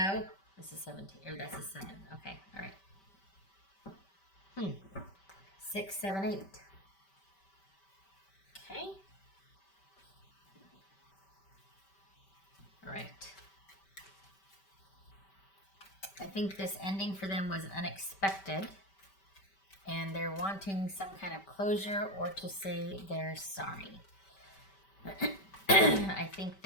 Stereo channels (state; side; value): late; right; 5.1 ms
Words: this is 17, or that's a 7. Okay, all right. 6, 7, 8. Okay. All right. I think this ending for them was unexpected, and they're wanting some kind of closure or to say they're sorry. I think